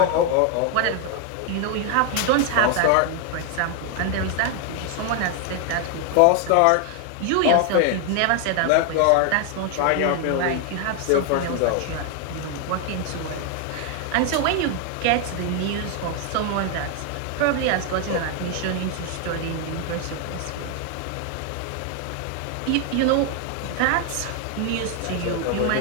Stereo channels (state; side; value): different; both; correlation 0.00